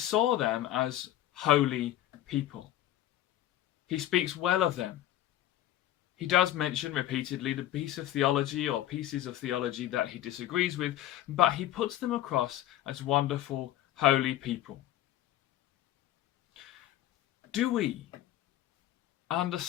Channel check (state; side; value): quieter; right; 13.2 dB